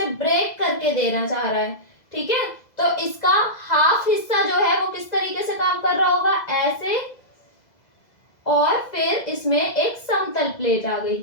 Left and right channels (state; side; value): late; right; 2.0 ms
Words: ब्रेक करके देना चाह रहा है। ठीक है, तो इसका हाफ हिस्सा जो है वो किस तरीके से काम कर रहा होगा, ऐसे, और फिर इसमें एक समतल प्लेट आ गई,